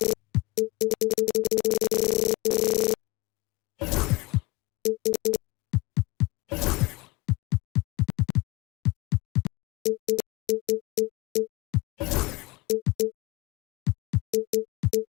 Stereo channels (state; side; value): quieter; right; 22.5 dB